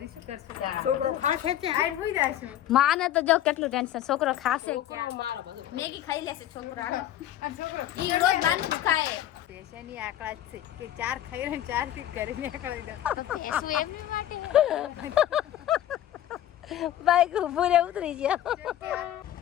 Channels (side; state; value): right; quieter; 12.2 dB